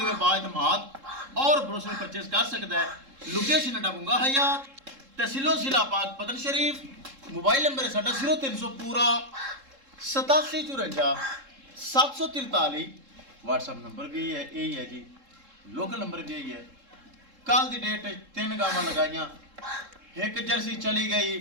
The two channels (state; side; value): late; left; 3.7 ms